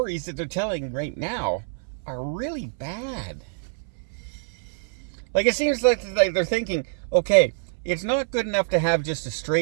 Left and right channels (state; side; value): silent; left; 61 dB below the other